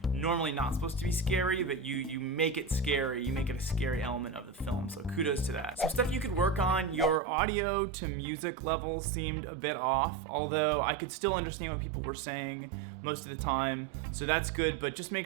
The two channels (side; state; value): left; drops out; at 7.2 s